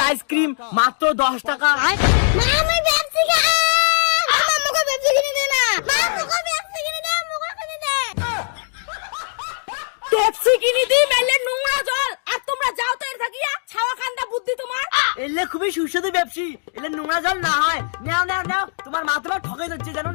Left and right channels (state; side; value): silent; right; digital silence